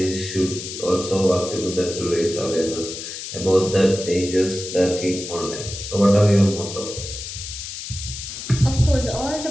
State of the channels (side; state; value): left; noise; hiss, 9 dB below the sound